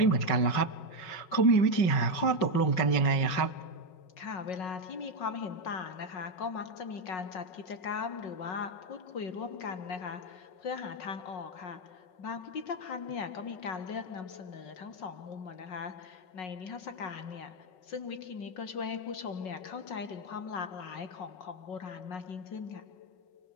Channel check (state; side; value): late; right; 5.4 ms